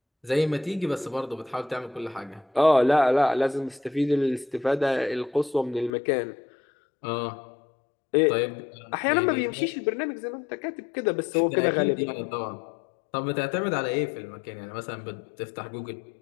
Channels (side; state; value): right; drops out; at 5.9 s